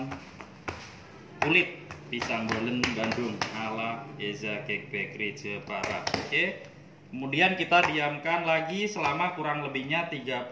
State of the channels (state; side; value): identical; both; correlation 1.00